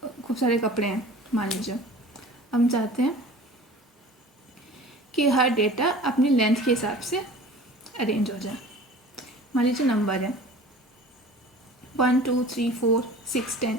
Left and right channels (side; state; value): both; normal; correlation 0.42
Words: सारे कपड़े हैं, मान लीजिए हम चाहते हैं कि हर डेटा अपनी लेंथ के हिसाब से अरेंज हो जाए। मान लीजिए नंबर है 1 2 3 4 6